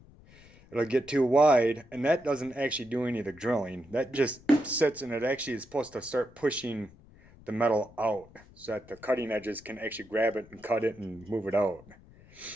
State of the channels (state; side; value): noise; left; rumble, 24 dB below the sound